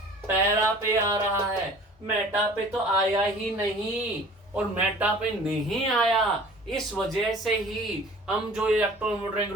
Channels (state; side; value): normal; both; correlation 0.47